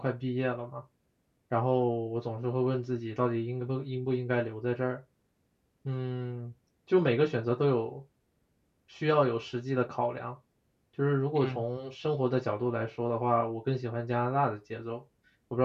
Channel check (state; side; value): identical; both; correlation 1.00